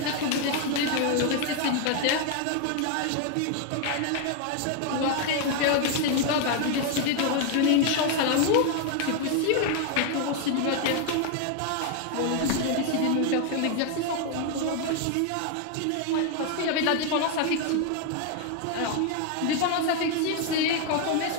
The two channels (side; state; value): both; different; correlation 0.00